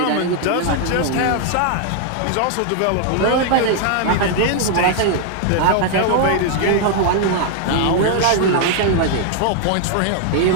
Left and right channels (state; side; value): different; both; correlation 0.00